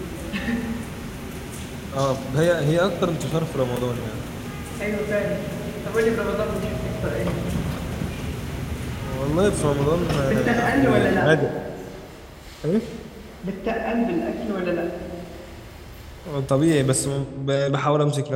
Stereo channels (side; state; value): both; identical; correlation 1.00